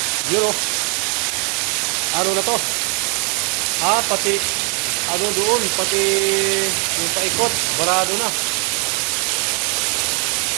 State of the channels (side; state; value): left; quieter; 36.1 dB